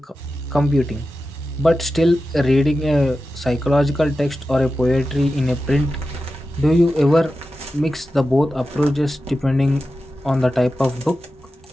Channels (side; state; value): both; normal; correlation 0.92